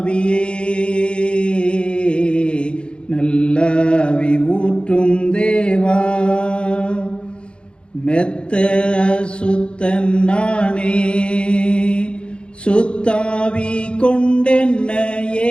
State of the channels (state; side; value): late; right; 0.056 ms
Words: நல்லாவி ஊற்றும் தேவா. மெத்த சுத்தன் நானே, சுத்தாவி